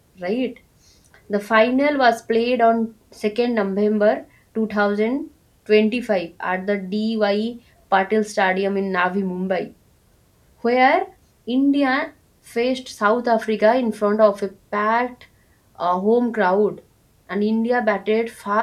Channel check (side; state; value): both; identical; correlation 1.00